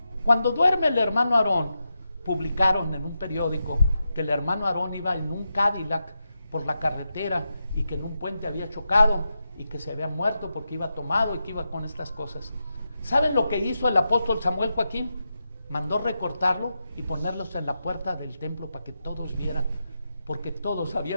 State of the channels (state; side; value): inverted; both; correlation -0.88